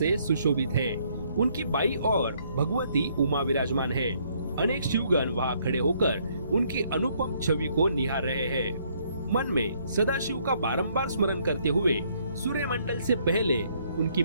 सुशोभित है। उनकी बाई ओर भगवती उमा विराजमान है। अनेक शिवगण वहां खड़े होकर उनकी अनुपम छवि को निहार रहे हैं। मन में सदाशिव का बारंबार स्मरण करते हुए सूर्य मंडल से पहले उनकी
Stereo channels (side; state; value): both; inverted; correlation -0.68